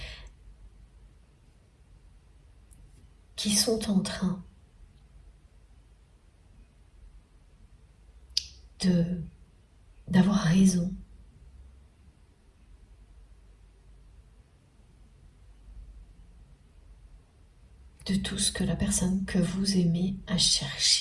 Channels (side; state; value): both; identical; correlation 1.00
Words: qui sont en train d'avoir raison de tout ce que la personne que vous aimez a